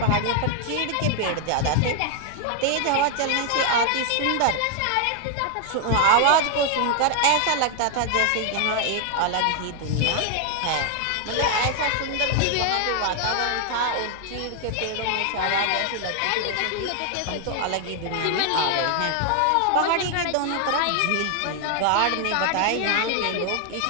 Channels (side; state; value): both; different; correlation 0.00